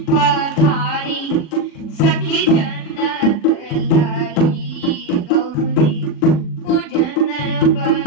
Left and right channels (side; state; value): right; late; 39 ms